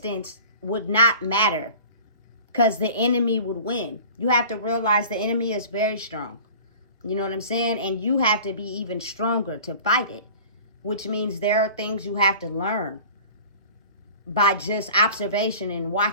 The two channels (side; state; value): both; inverted; correlation -0.42